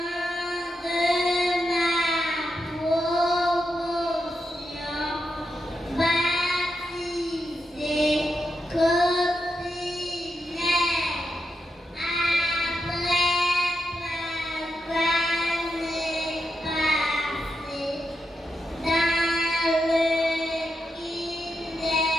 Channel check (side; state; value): both; normal; correlation 0.85